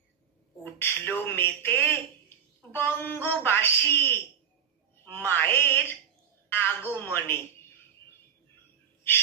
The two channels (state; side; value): quieter; left; 8.1 dB